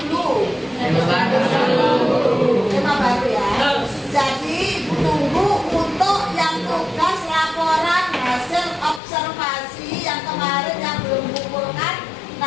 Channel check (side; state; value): right; drops out; at 9.0 s